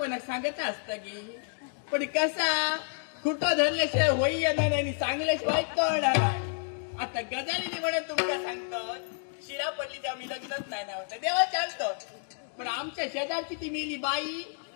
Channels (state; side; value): silent; right; 58 dB below the other